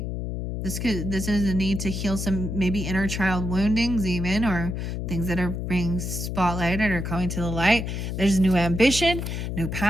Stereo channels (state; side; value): noise; left; hum, 4 dB below the sound